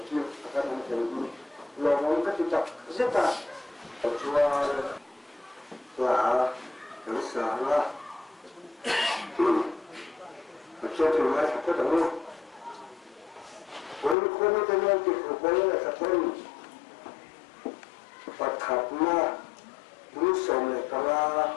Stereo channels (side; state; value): right; drops out; at 14.2 s